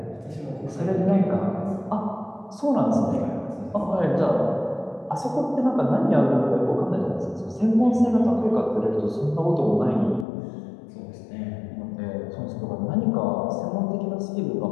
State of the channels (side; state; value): right; drops out; at 10.2 s